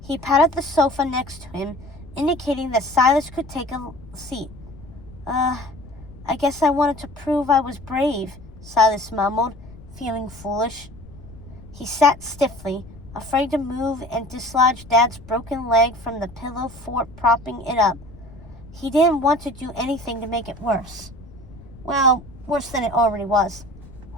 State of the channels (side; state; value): left; noise; rumble, 19 dB below the sound